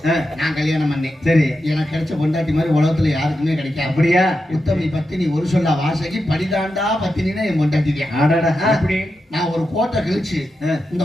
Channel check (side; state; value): both; normal; correlation 0.88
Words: நான் கல்யாணம் பண்ணேன். சரி. எனக்கு கிடைச்ச பொண்டாட்டி மாதிரி உலகத்துல யாருக்குமே கிடைக்காது. அப்படியா? உத்தமி பத்தினி ஒரு சொல்ல வாசகி படிதாண்டா பத்தினா என் பொண்டாட்டி தான். அப்படி நான் ஒரு கோட்டை கழிச்சு இந்த